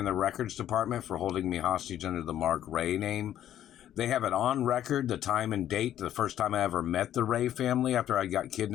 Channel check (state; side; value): quieter; right; 11.3 dB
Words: the records department for holding me hostage under the Mark Ray name. They have it on record, the time and date, the first time I ever met the Ray family after I got